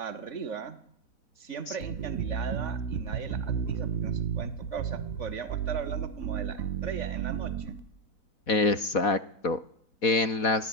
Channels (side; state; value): right; late; 4.2 ms